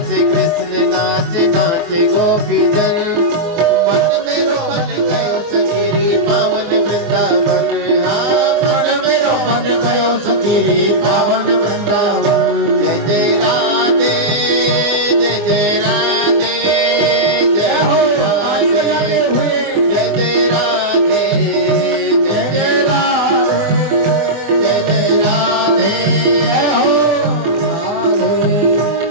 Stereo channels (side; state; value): left; late; 24 ms